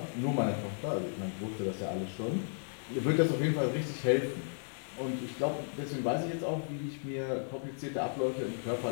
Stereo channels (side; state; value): right; silent; digital silence